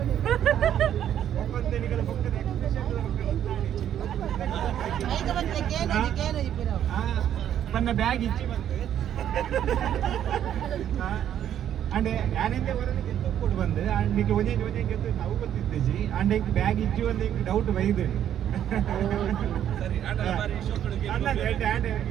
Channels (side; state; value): left; quieter; 10.3 dB